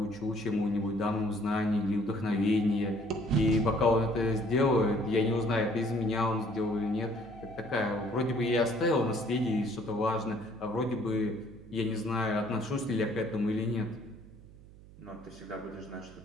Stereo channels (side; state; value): right; noise; hum, 21 dB below the sound